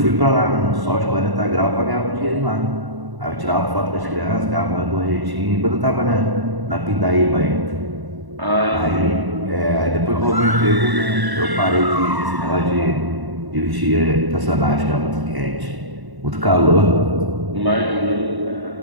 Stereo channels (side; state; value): left; late; 1.1 ms